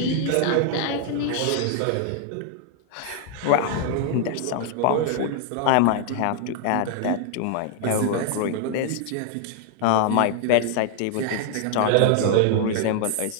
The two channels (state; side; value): different; both; correlation 0.00